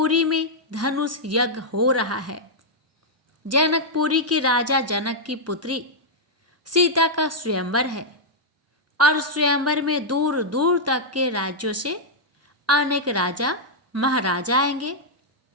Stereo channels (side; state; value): both; normal; correlation -0.06